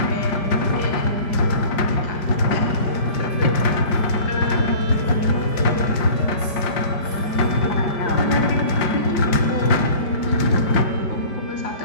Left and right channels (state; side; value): late; right; 5.1 ms